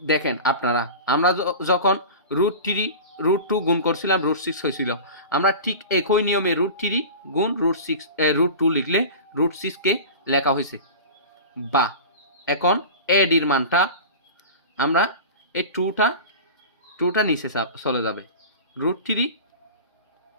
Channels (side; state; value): both; inverted; correlation -0.32